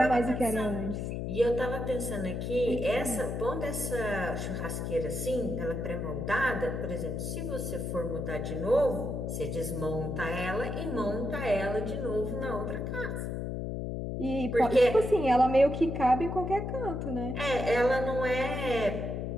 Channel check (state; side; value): noise; left; hum, 3 dB below the sound